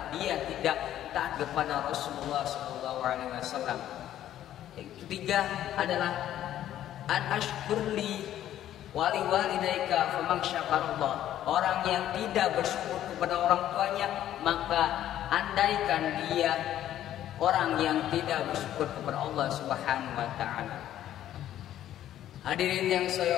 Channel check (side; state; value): right; quieter; 12.0 dB